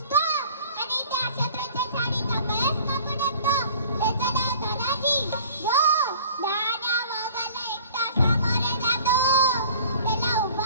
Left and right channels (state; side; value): inverted; both; correlation -0.48